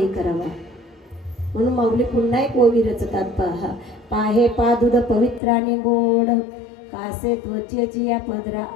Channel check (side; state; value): right; drops out; at 5.4 s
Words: करावा. म्हणून माऊली पुन्हा एक ओवी रचतात पहा पाहे पा दूध पवित्राने गोड कासे त्वचेची या पदरा